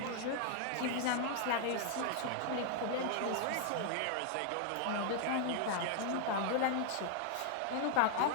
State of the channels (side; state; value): both; different; correlation 0.00